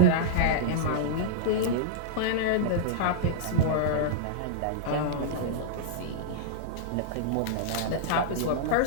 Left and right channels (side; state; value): both; different; correlation -0.02